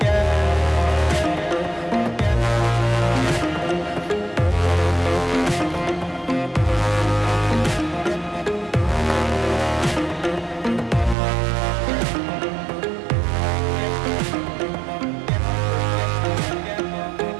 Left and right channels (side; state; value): left; drops out; at 11.2 s